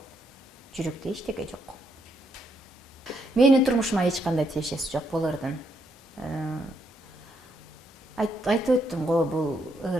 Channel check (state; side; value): normal; both; correlation 0.76